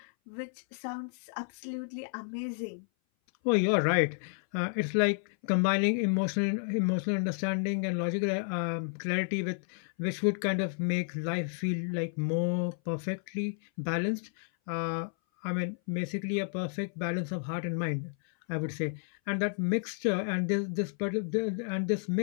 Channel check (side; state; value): right; silent; 57 dB below the other